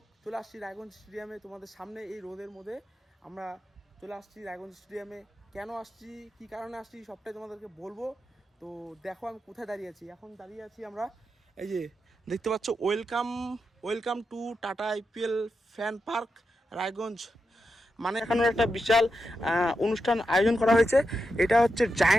চলে আসছি রায়গঞ্জ স্টেডিয়ামে তোমাদের সামনে। এই রোদের মধ্যে আমরা চলে আসছি রায়গঞ্জ স্টেডিয়ামে। কেন আসছি, কি কারণে আসছি, সবটাই তোমাদেরকে বলবো। তো দেখো আমি কোথায় দাঁড়িয়ে আছি। এখন দাঁড়িয়ে আছি আমরা, এই যে দেখতে পাচ্ছ, welcome to tata IPL fan park Raiganj. মানে এখানে একটা বিশাল অনুষ্ঠান আয়োজন করা হয়েছে। এটা হচ্ছে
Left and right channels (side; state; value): both; normal; correlation 0.87